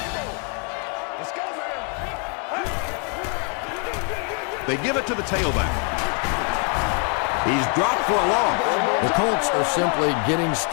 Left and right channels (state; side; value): quieter; right; 40.0 dB